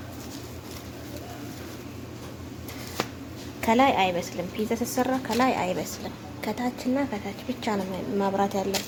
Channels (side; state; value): both; identical; correlation 1.00